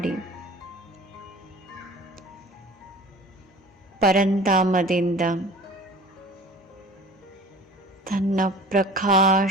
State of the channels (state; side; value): normal; both; correlation 0.43